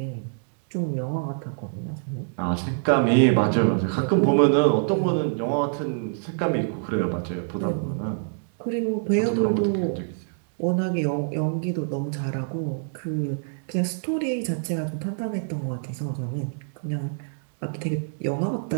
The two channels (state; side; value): silent; left; digital silence